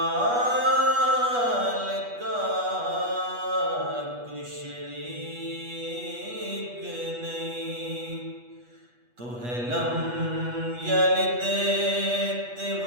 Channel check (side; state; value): left; late; 8.3 ms